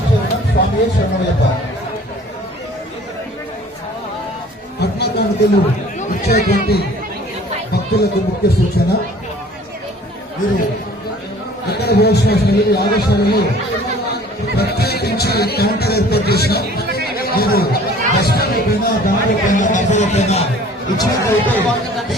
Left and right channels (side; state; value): both; normal; correlation 0.50